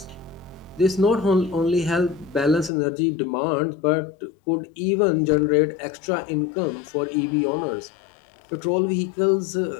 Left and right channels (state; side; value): drops out; right; at 2.7 s